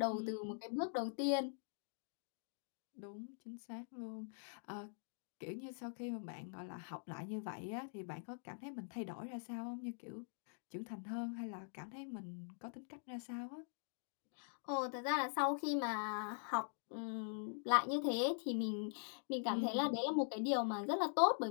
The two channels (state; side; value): silent; right; digital silence